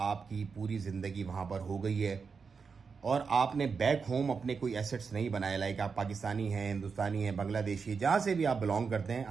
पूरी ज़िंदगी वहाँ पर हो गई है और आपने बैक होम अपने कोई एसेट्स नहीं बनाए, लाइक आप पाकिस्तानी हैं, हिंदुस्तानी हैं, बांग्लादेशी, जहाँ से भी आप बिलोंग करते हैं,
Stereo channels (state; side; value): quieter; left; 5.4 dB